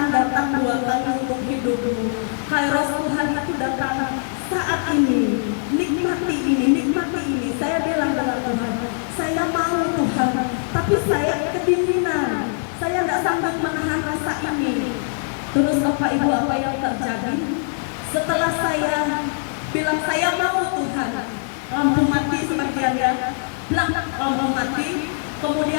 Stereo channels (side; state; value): right; silent; 64 dB below the other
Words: datang 2 kali untuk hidupmu. Kairos Tuhan itu datang saat ini. Nikmati ini. Saya bilang dengan Tuhan, saya mau Tuhan, tapi saya kedinginan. Saya tidak sanggup menahan rasa ini. Terus Bapak Ibu, apa yang terjadi? Setelah saya bilang saya mau Tuhan, lampu mati sebagiannya, lampu mati.